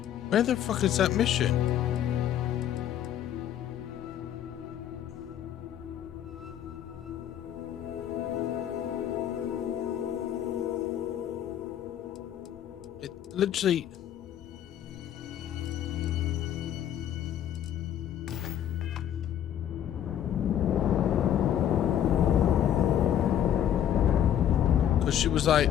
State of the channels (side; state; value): right; quieter; 10.3 dB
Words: Where the fuck is that mission? It literally... Because she was like,